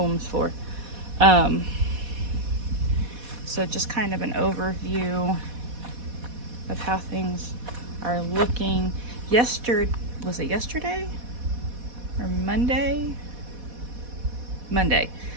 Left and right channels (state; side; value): late; left; 4.1 ms